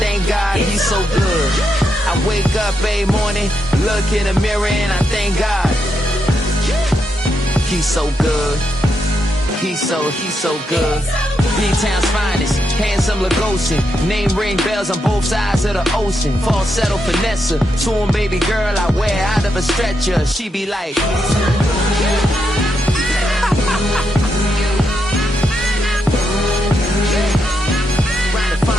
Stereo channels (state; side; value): normal; both; correlation 0.82